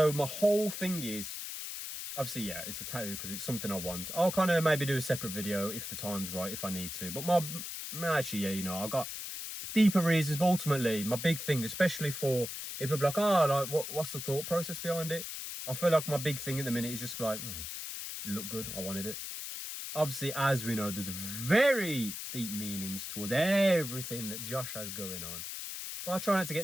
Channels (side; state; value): left; noise; hiss, 7 dB below the sound